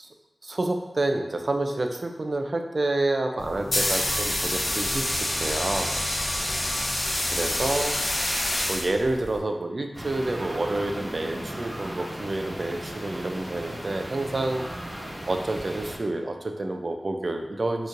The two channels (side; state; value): both; normal; correlation 0.96